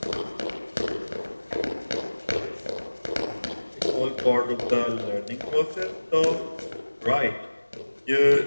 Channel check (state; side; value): inverted; both; correlation -1.00